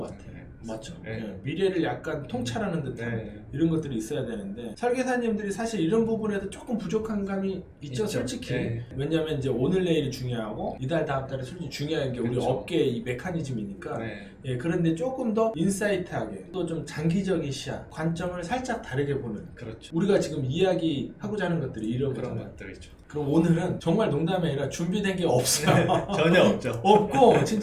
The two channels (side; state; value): both; identical; correlation 1.00